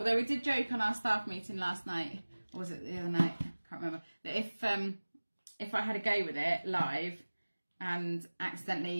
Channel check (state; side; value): inverted; both; correlation -1.00